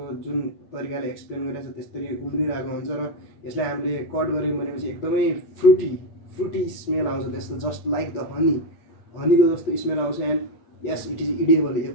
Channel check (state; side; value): late; right; 8.6 ms